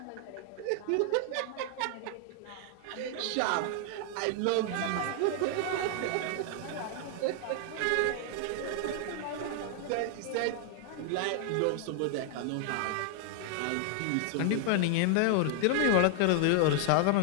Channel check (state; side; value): different; both; correlation 0.00